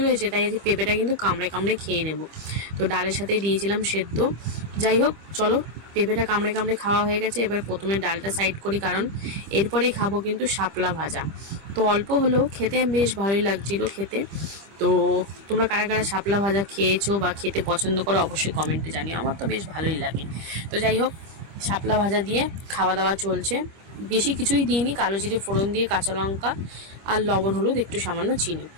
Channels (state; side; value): late; left; 25 ms